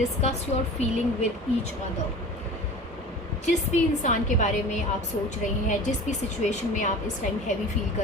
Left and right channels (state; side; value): normal; both; correlation 0.38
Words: your feeling with each other. जिस भी इंसान के बारे में आप सोच रहे हैं, जिस भी सिचुएशन में आप इस टाइम हैवी फील